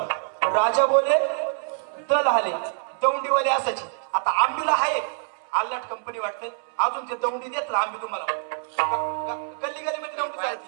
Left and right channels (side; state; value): left; silent; 60 dB below the other